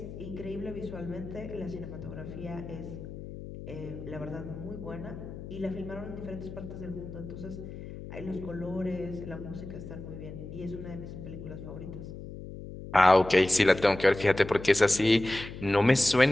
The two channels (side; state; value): left; noise; hum, 11 dB below the sound